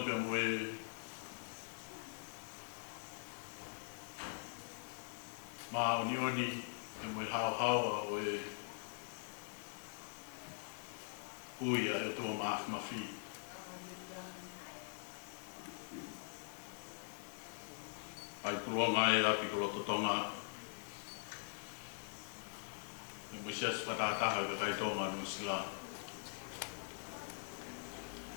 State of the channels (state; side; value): silent; right; digital silence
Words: pe moe ma oni pe moe hao o e uia e tua mafi. Ai tuloa ngai api ko totonga. E moe sias patataha ka kai tonga no sila.